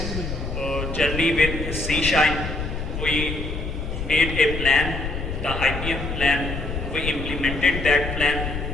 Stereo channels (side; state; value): left; noise; rumble, 5 dB below the sound